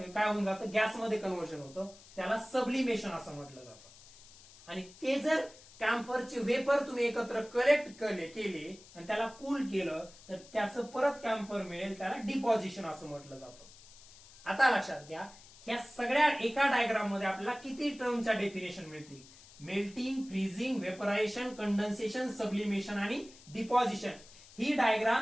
काय होऊन जातं, गॅसमध्ये कन्व्हर्जन होतं. त्याला सब्लिमेशन असं म्हटलं जातं. आणि ते जर कॅम्फरचे वेपर तुम्ही एकत्र कलेक्ट केले आणि त्याला कूल केलं तर त्याचं परत कॅम्फर मिळेल, त्याला डिपॉझिशन असं म्हटलं जातं. आता लक्षात घ्या, ह्या सगळ्या एका डायग्राम मध्ये आपल्याला किती टर्मच्या डेफिनेशन मिळतील? Melting, freezing, vaporisation, condensation, sublimation आणि डिपॉझिशन. ही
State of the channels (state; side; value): noise; left; hiss, 21 dB below the sound